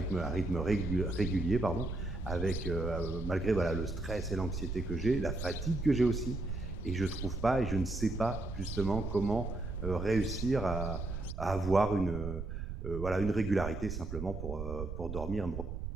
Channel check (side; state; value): right; noise; rumble, 6 dB below the sound